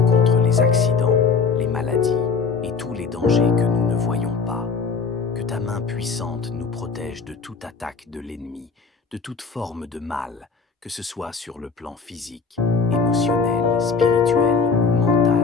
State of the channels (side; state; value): right; quieter; 5.0 dB